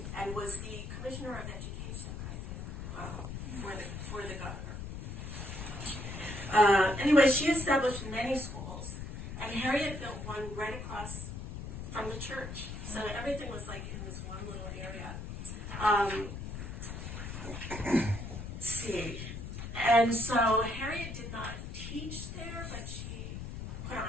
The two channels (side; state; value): left; noise; rumble, 7 dB below the sound